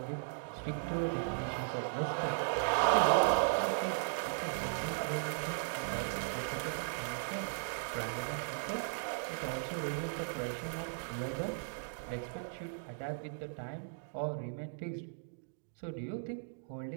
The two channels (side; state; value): left; silent; digital silence